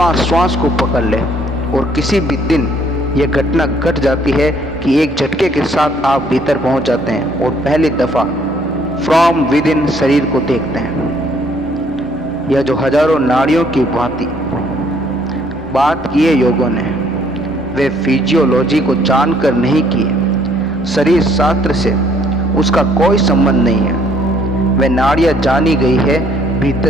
श्वास को पकड़ ले। और किसी भी दिन यह घटना घट जाती है कि एक झटके के साथ आप भीतर पहुंच जाते हैं और पहली दफा फ्रॉम विद इन शरीर को देखते हैं। यह जो हजारों नाड़ियों की भांति बात की है योगों ने, वे फिजियोलॉजी को जानकर नहीं किए। शरीर शास्त्र से उसका कोई संबंध नहीं है। वे नाड़ियाँ जानी गई है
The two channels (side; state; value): both; normal; correlation 0.65